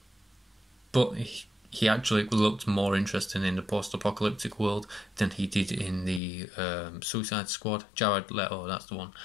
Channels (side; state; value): right; drops out; at 6.2 s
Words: But he actually looked more interesting in the post-apocalyptic world than he did in the Suicide Squad. Jared Leto, that's the one.